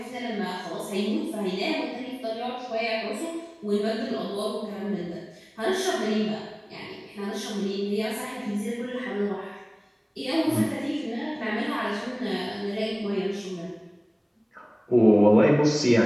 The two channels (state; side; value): identical; both; correlation 1.00